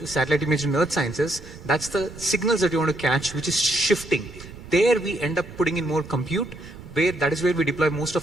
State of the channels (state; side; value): noise; right; rumble, 16 dB below the sound